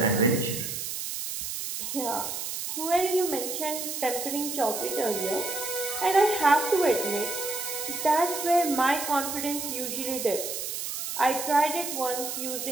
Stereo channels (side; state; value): right; noise; hiss, 4 dB below the sound